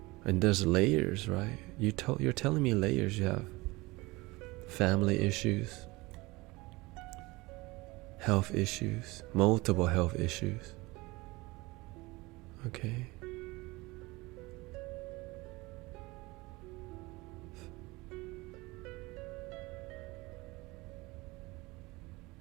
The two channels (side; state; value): left; quieter; 22.5 dB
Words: And there's layers, right? You're telling me layers. You have family issues, health issues, multiple health issues. Okay.